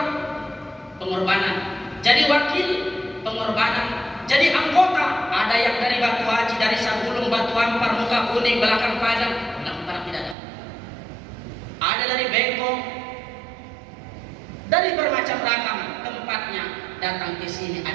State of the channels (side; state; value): left; drops out; at 10.4 s